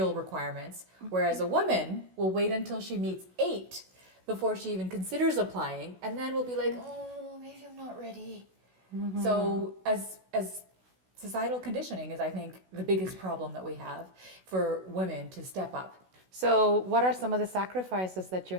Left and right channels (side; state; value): left; late; 16 ms